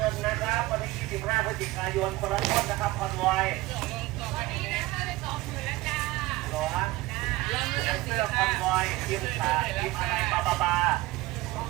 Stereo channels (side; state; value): left; quieter; 18.7 dB